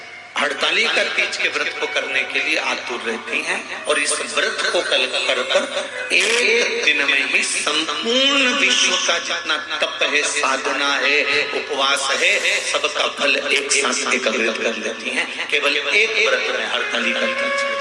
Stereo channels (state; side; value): identical; both; correlation 1.00